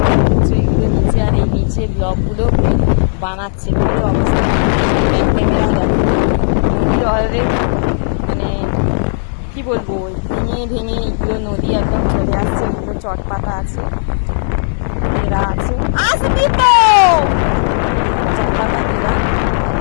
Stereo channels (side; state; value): right; silent; digital silence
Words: হচ্ছে এগুলো নিচে, আর এই নিচে ব্লকগুলো বানাচ্ছে। কি অবস্থা নদীর অলরেডি মানে কি বলবো, ভেঙে ভেঙে এগুলো নদী একদম চলে আসছে। এগুলো চটপাতা আছে, এরা আছে চটপাতা এরা।